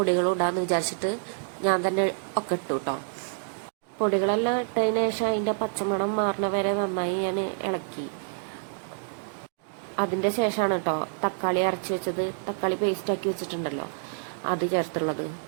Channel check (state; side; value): silent; left; digital silence